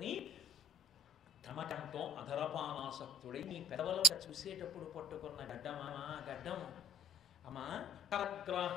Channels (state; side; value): normal; both; correlation 0.45